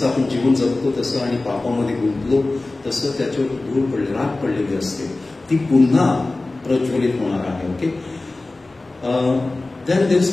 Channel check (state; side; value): quieter; right; 3.1 dB